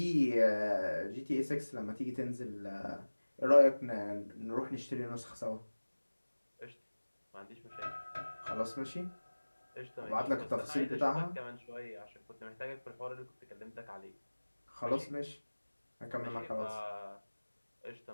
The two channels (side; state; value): both; inverted; correlation -1.00